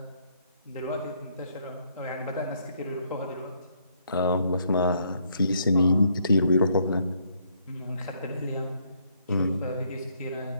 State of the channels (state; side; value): inverted; both; correlation -0.70